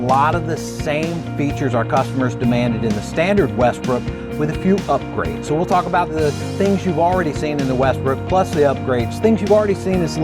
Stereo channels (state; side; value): identical; both; correlation 1.00